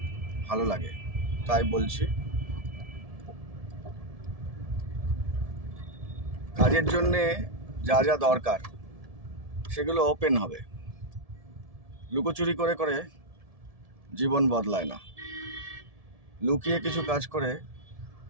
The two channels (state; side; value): late; left; 1.7 ms